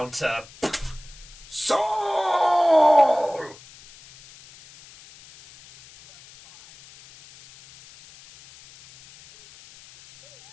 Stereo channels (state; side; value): noise; left; hiss, 23 dB below the sound